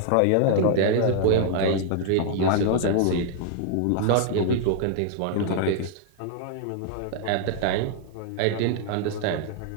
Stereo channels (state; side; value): different; both; correlation -0.01